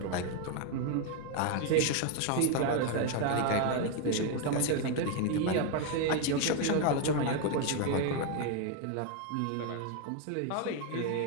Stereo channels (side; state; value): both; different; correlation 0.01